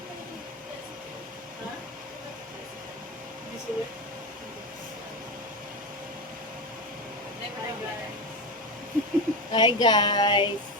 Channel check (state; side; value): normal; both; correlation 0.18